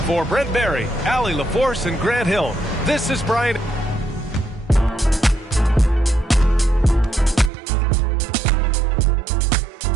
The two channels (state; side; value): drops out; left; at 7.5 s